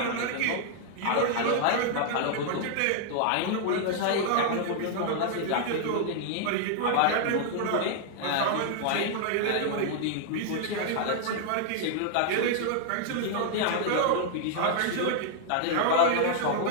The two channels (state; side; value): different; both; correlation 0.00